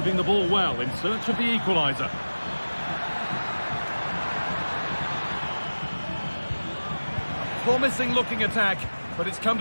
the ball well in search of the equaliser. Promising looking attack, but it's come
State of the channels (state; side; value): inverted; both; correlation -1.00